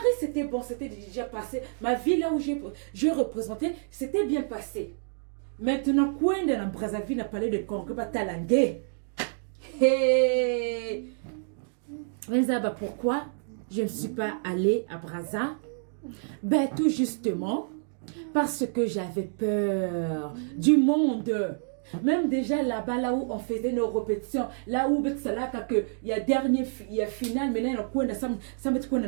c'était bon, c'était déjà passé. Ma vie là où je représentais, c'était bien passé. Maintenant, quand dans Brazzaville a parlé de congrès, Talangé. Hey! Pourquoi je ne suis pas allée à Brazza? Ben, tout justement, parce que j'avais peur du monde. Même déjà là-bas, là où on faisait nos répétitions, là où il y a dernier, il y a final, maintenant on ça met quoi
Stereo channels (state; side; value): silent; left; digital silence